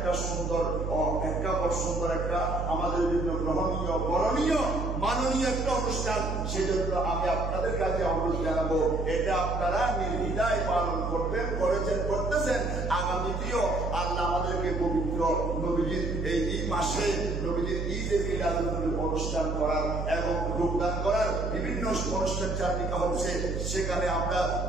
সুন্দর একটা আমাদের জন্য গ্রহণীয়, করণীয়, মাননীয় একটা অনুষ্ঠান। সেজন্য আমি আপনাদের কাছে অনুরোধ জানাবো, এটা আপনারা নির্দ্বিধায় পালন করবেন, করতেছেন। আগামীতেও আল্লাহ আমাদেরকে পবিত্র নবীজির এই মাসে নবীজির ঈদে মিলাদুন নবীর অনুষ্ঠান করার এবং যোগদান করার বিভিন্ন অনুষ্ঠান চালিকা হচ্ছে, সেখানে আমরা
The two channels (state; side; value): noise; right; hum, 3 dB below the sound